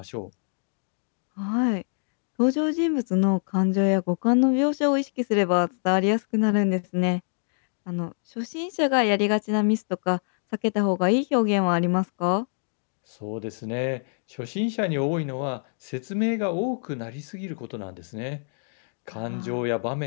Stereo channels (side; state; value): right; silent; digital silence